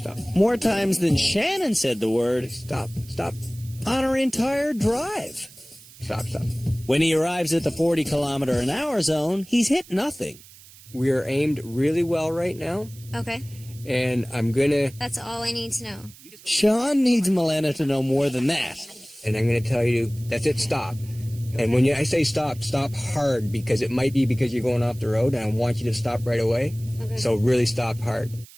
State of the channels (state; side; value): noise; right; hiss, 21 dB below the sound